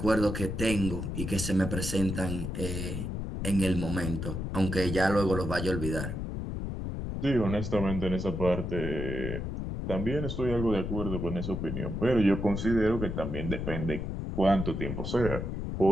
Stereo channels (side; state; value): left; noise; rumble, 4 dB below the sound